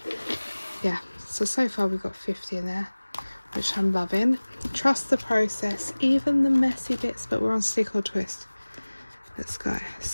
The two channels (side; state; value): both; inverted; correlation -1.00